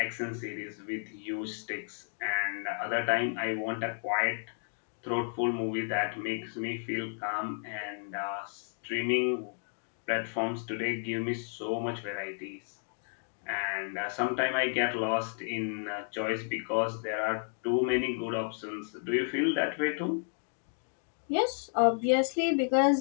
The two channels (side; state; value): right; silent; 56 dB below the other